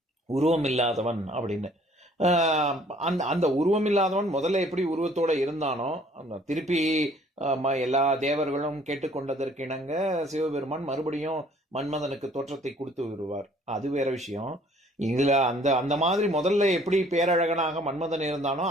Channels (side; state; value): both; normal; correlation 0.58